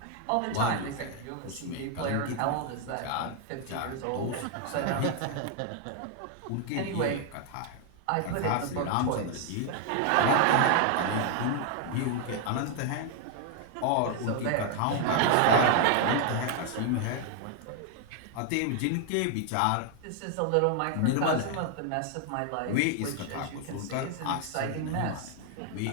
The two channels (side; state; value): both; different; correlation 0.00